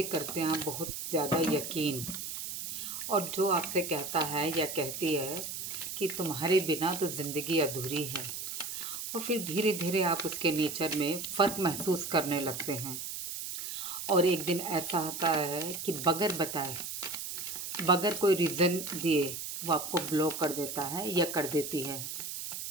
करते हैं आप बहुत ज़्यादा यकीन, और जो आपसे कहता है या कहती है कि तुम्हारे बिना तो ज़िंदगी अधूरी है, और फिर धीरे धीरे आप उसके नेचर में फ़र्क महसूस करने लगते हैं। और एक दिन ऐसा आता है कि बगैर बताए, बगैर कोई रीज़न दिए वो आपको ब्लॉक कर देता है या कर देती है,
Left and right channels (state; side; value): noise; right; hiss, 6 dB below the sound